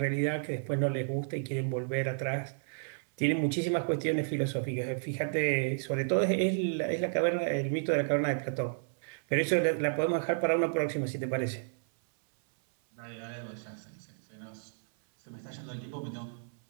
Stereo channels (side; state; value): left; silent; 56 dB below the other